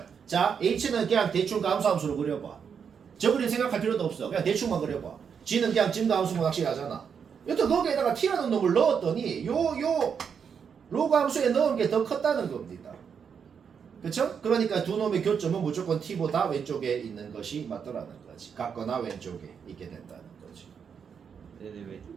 자, h는 그냥 대충 감소함수로 그려봐. 저 그림 생각할 필요도 없어. 그냥 대충만 그려봐. g는 그냥 증가함수만 확실하잖아. 여튼 거기에다가 t라는 놈을 넣었더니 요 로그 함수에 넣은 게 더 컸다는 겁니다. 그쵸? 그러니까 두 놈의 교점은 무조건 t보다 왼쪽에 있는 것이 맞더라는 거지. 같거나 왼쪽에 있게 된다는 거지. 근데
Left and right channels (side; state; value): left; quieter; 6.9 dB